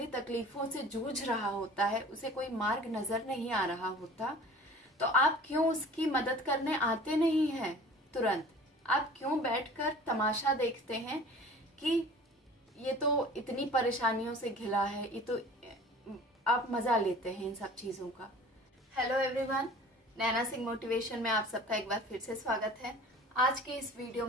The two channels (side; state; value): both; normal; correlation 0.44